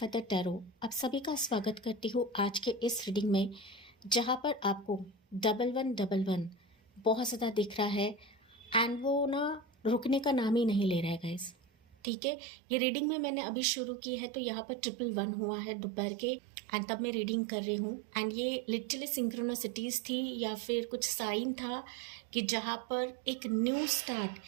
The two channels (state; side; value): drops out; left; at 12.0 s